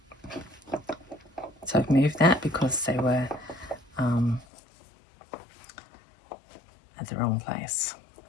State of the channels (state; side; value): drops out; right; at 4.5 s